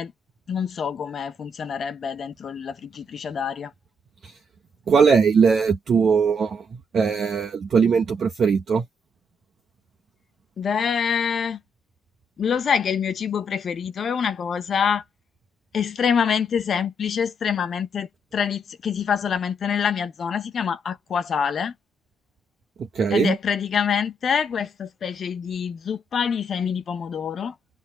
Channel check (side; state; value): both; normal; correlation 0.74